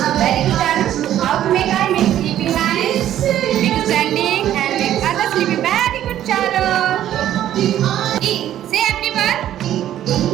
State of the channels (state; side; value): quieter; left; 11.8 dB